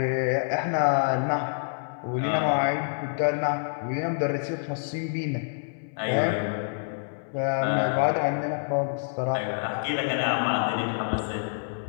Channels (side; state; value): right; silent; 60 dB below the other